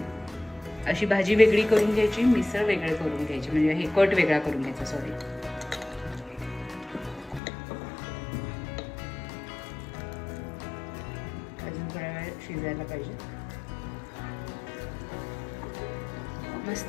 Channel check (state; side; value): drops out; right; at 7.4 s